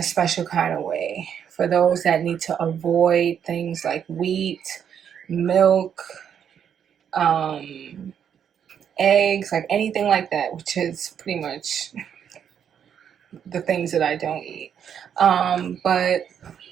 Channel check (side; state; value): left; quieter; 8.4 dB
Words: special kind of way. For those that need to avoid things like wheat, milk, eggs, like anything like that, which is pretty much the things that I don't eat. But